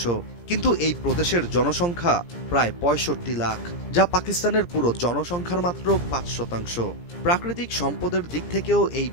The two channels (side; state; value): right; late; 17 ms